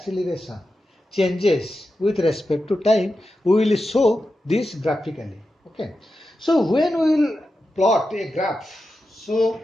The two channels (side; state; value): both; normal; correlation 0.90